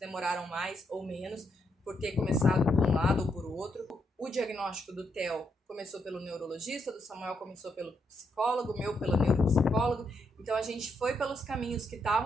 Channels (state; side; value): normal; both; correlation 0.78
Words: mais ou menos por ter começado por um lado ou por outro. O diagnóstico do Theo começou pelo neurologista, do Samuel começou pelo psicólogo, o meu pelo neuropsicólogo. Então a gente foi pelos caminhos que